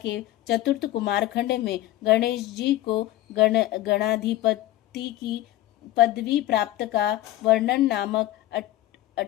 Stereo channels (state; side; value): quieter; right; 15.3 dB